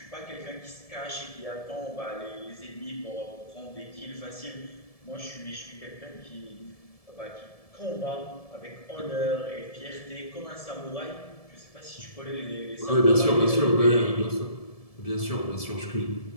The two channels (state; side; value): late; right; 1.7 ms